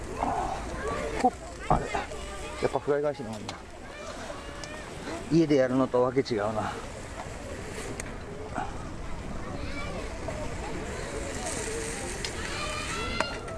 ほっ、あれやっぱフライ返しの方がいいな。家でやるのとわけ違うな。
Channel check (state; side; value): identical; both; correlation 1.00